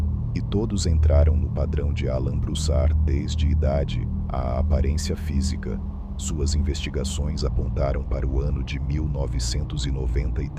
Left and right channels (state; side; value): identical; both; correlation 1.00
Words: e todos entraram no padrão de Alan Broussard desde idade à aparência física. Suas investigações apontaram para o ano de